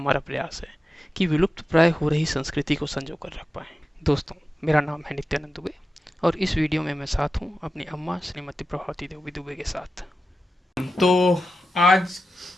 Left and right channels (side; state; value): both; normal; correlation 0.92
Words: प्रयास है कि विलुप्त प्राय हो रही संस्कृति को संजो कर रख पाएं। दोस्तों, मेरा नाम है नित्यानंद दुबे और इस वीडियो में मैं साथ हूँ अपनी अम्मा श्रीमती प्रभावती देवी दुबे के साथ। तो आज